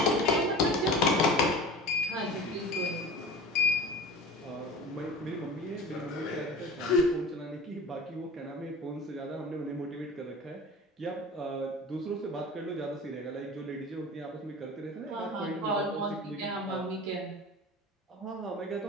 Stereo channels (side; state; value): both; normal; correlation 0.36